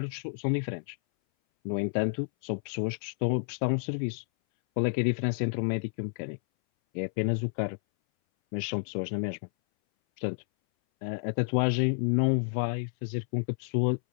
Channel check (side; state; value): right; silent; 58 dB below the other